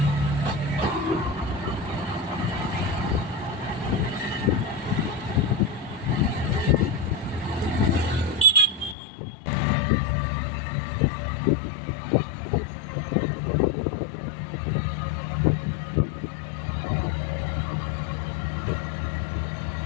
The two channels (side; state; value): right; drops out; at 9.0 s